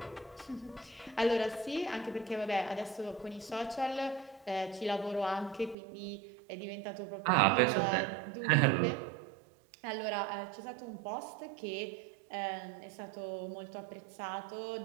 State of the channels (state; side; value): drops out; left; at 5.8 s